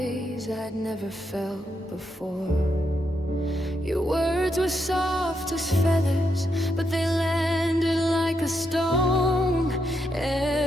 I'd never felt before. Your words were soft as feathers, but they landed like a stone.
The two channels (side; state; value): both; normal; correlation 0.81